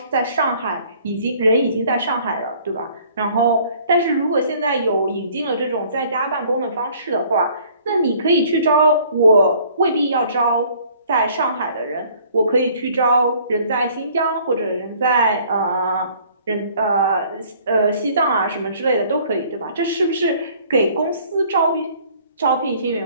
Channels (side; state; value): both; inverted; correlation -0.56